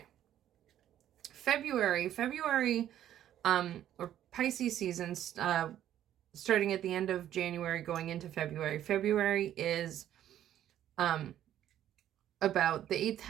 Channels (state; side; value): quieter; left; 11.5 dB